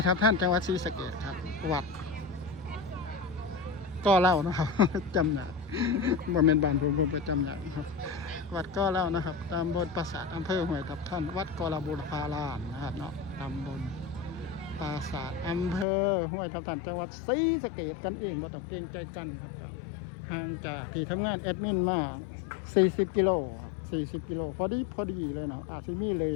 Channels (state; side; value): drops out; right; at 15.9 s